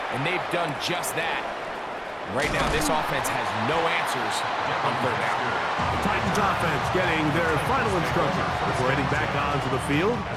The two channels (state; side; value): identical; both; correlation 1.00